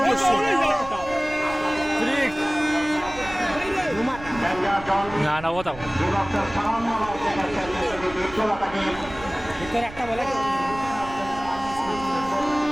দর্শক। না না কথা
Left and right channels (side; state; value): right; noise; rumble, 16 dB below the sound